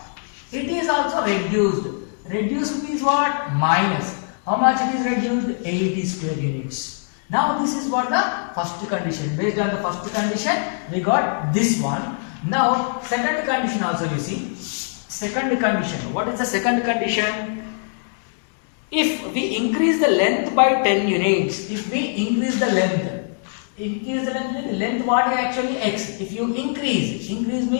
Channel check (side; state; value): right; silent; digital silence